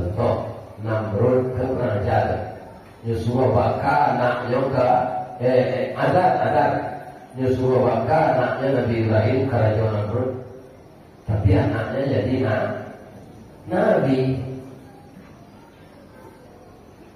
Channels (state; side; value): identical; both; correlation 1.00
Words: Namrud ke kurang ajar. Yusuf Baka anaknya ke Adar. Yusuf Baka anaknya Nabi Ibrahim kerajaan Namrud. Tapi anaknya jadi Nabi.